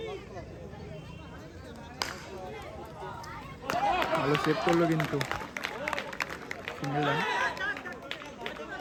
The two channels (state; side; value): identical; both; correlation 1.00